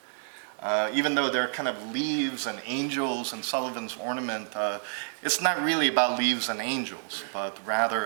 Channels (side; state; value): left; silent; digital silence